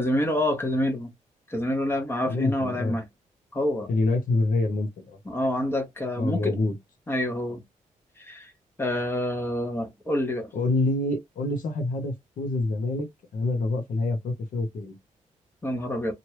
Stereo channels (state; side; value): normal; both; correlation 0.74